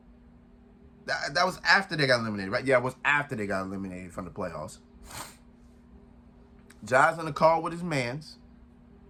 That was after they got eliminated, right? Yeah, it was after they got eliminated from the playoffs. Ja's in the call with his mans.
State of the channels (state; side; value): identical; both; correlation 1.00